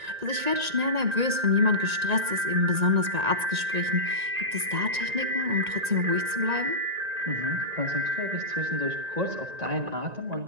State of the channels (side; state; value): left; late; 1.9 ms